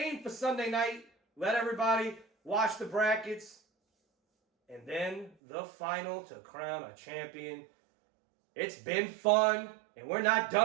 aim for Sunday night. Let everybody watch the brackets. And then the final to crown a champion. It's been fun. And we're not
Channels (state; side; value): drops out; left; at 5.4 s